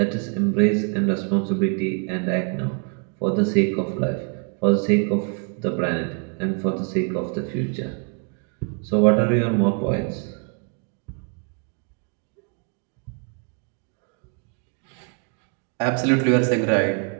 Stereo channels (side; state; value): left; quieter; 39.9 dB